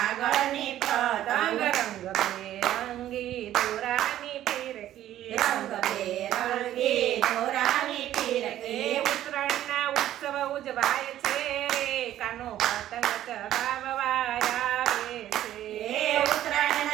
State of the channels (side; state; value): left; quieter; 12.7 dB